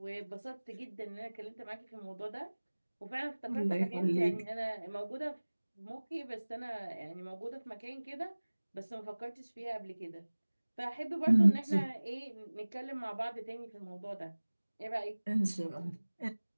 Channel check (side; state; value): both; inverted; correlation -1.00